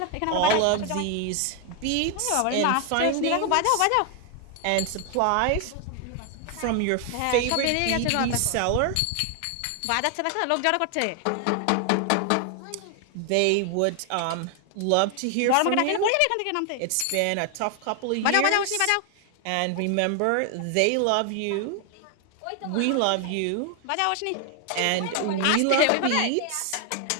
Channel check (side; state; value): both; different; correlation 0.01